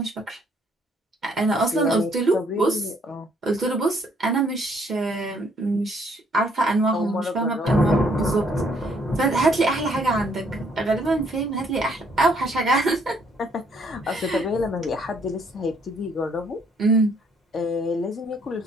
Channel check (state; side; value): normal; both; correlation 0.67